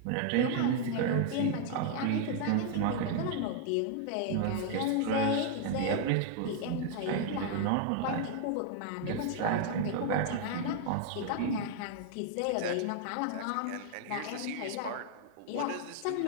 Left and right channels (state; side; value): different; both; correlation 0.00